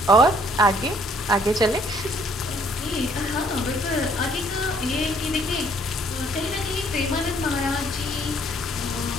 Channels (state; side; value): normal; both; correlation 0.63